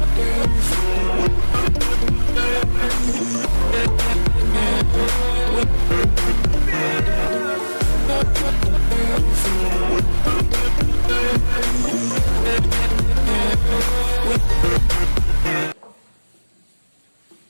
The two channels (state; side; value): inverted; both; correlation -1.00